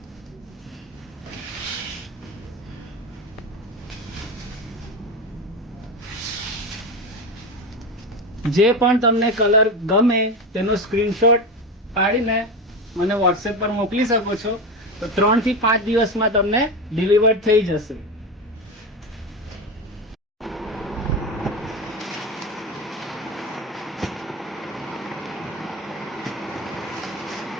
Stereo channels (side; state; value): both; normal; correlation 0.20